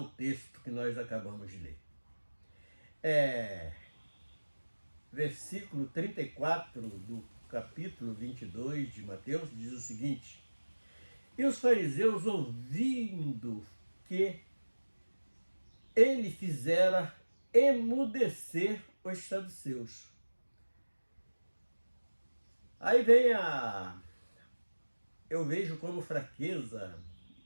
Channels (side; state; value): both; inverted; correlation -1.00